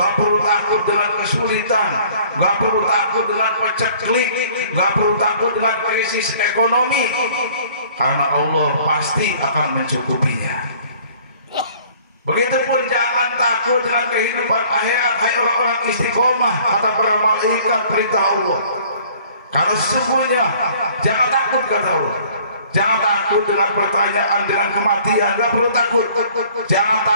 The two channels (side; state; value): both; inverted; correlation -0.54